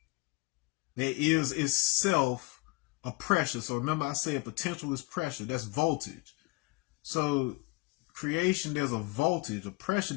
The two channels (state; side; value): quieter; right; 24.6 dB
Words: that is itself a pressure. So remember, I say a potential is pressure. That's voltage. So creation, there's a voltage, a pressure